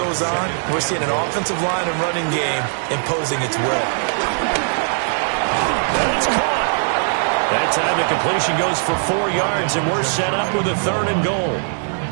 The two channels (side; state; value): left; silent; 56 dB below the other